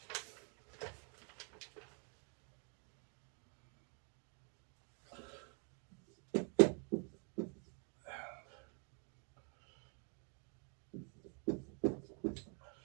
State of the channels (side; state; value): left; quieter; 39.9 dB